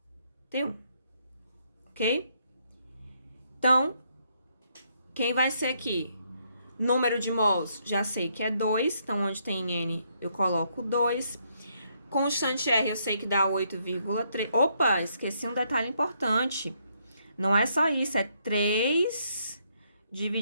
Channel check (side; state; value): both; inverted; correlation -0.74